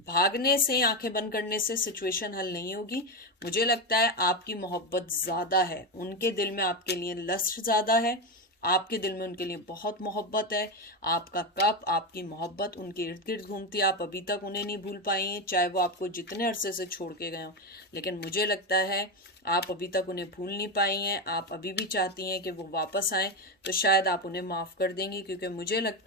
भागने से, आंखें बंद करने से सिचुएशन हल नहीं होगी। मुझे लगता है आपकी मोहब्बत ज़्यादा है, उनके दिल में आपके लिए लस्ट ज़्यादा है, आपके दिल में उनके लिए बहुत मोहब्बत है। आपका कप, आपकी मोहब्बत उनके इर्द गिर्द घूमती है। आप अभी तक उन्हें नहीं भूल पाई हैं, चाहे वो आपको जितने अरसे से छोड़ के गए हों। लेकिन मुझे लगता है आप अभी तक उन्हें भूल नहीं पाई हैं। आप अभी भी चाहती हैं कि वो वापस आएँ, तो शायद आप उन्हें माफ़ कर देंगी, क्योंकि मुझे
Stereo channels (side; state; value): both; normal; correlation 0.12